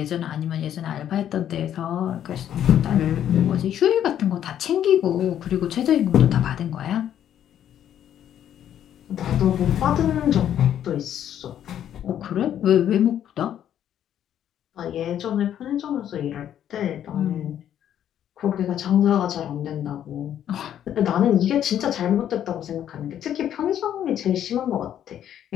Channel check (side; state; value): right; quieter; 10.4 dB